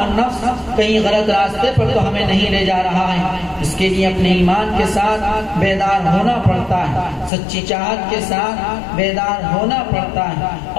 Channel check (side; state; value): right; drops out; at 7.3 s